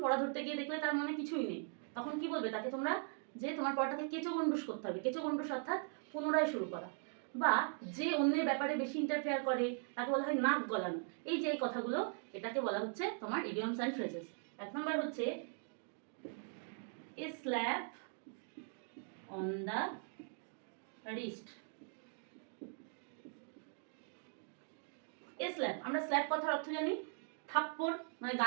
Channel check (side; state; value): left; silent; 51 dB below the other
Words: পড়া ধরতে গিয়ে দেখলে তার মনে কিছুই নেই, তখন কি বলবে তাকে তোমরা, যে তোমার পড়াটাকে কেঁচো গন্ডুস করতে হবে। কেঁচো গন্ডুস অর্থাৎ পুনরায় শুরু করা, বা যে অন্যের ব্যাপারে বেশি ইন্টারফেয়ার করে তাকে বলা হয় নাক গলানো। এই যে এই কথাগুলো, এটাকে বলা হচ্ছে তোমার ইডিয়মস অ্যান্ড ফ্রেজেস। এক নম্বর হচ্ছে a slap on the wrist. A slap, আমরা স্ল্যাপ কথার অর্থ জানি থাপ্পড়, মানে